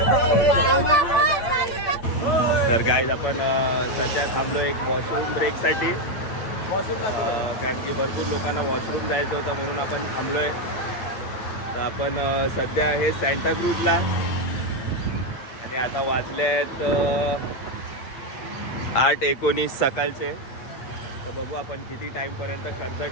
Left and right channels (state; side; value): late; right; 8.8 ms